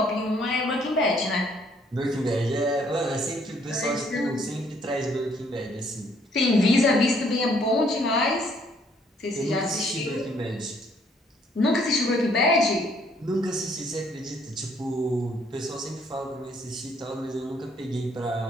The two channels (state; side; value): normal; both; correlation 0.65